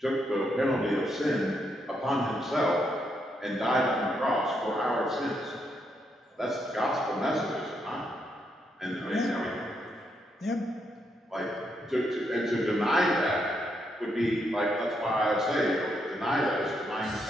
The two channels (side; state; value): both; normal; correlation 0.78